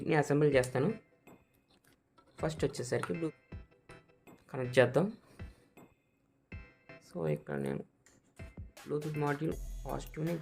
అసెంబ్లీ చేస్తాను. ఫస్ట్ వచ్చేసరికి కనెక్ట్ చేద్దాం. సో ఇక్కడ నేను బ్లూటూత్ మాడ్యూల్ పాజిటివ్ని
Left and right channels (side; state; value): both; identical; correlation 1.00